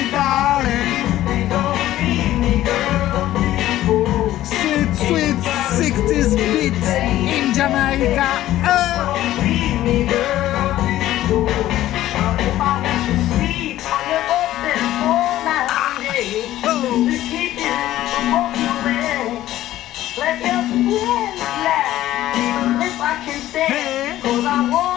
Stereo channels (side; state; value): right; quieter; 14.1 dB